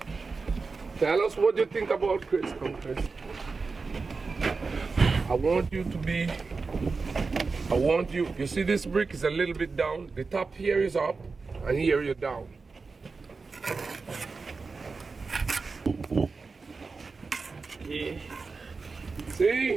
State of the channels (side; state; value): left; quieter; 4.3 dB